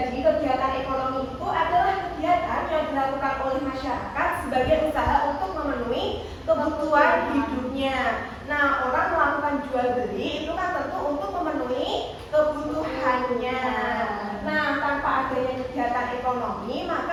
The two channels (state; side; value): identical; both; correlation 1.00